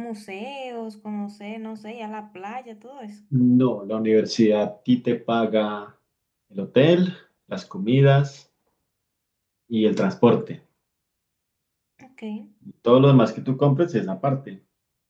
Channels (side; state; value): both; identical; correlation 1.00